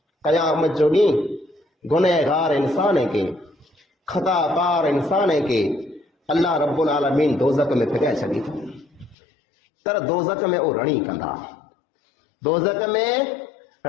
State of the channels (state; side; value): drops out; right; at 9.2 s